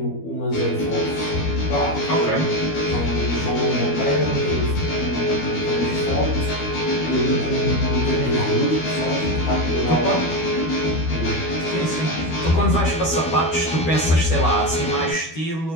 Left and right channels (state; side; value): late; right; 12 ms